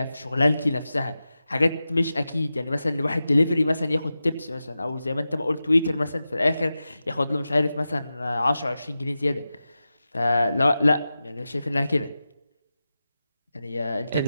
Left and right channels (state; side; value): inverted; both; correlation -0.93